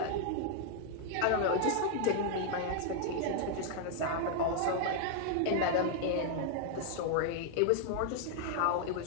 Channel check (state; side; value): different; both; correlation 0.00